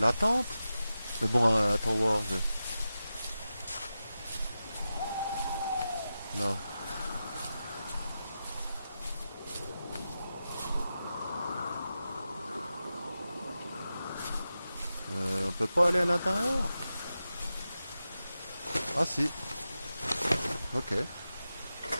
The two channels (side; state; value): both; inverted; correlation -0.92